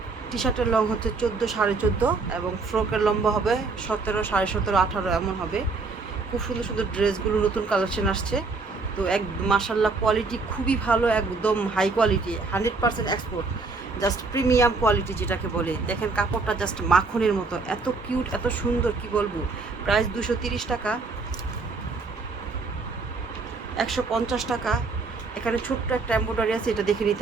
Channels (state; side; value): quieter; left; 4.0 dB